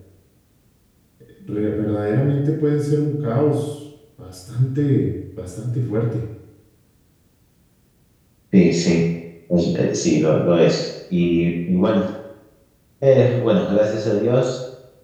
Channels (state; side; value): identical; both; correlation 1.00